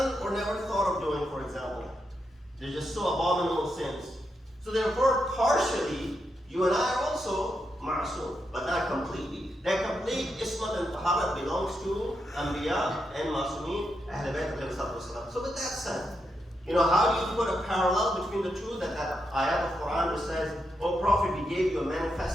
or never thought of doing, for example. They're just so abominable sins. So therefore, partially, you and I are also ma'asum, but not completely. That complete ismat and taharat belongs to Anbiya and Ma'asumeen, Ahl-e-Bait. So with that said, how do you put a parallel between the two? That ayat of Quran which says, "O Prophet, we gave you a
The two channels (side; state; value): both; normal; correlation 0.83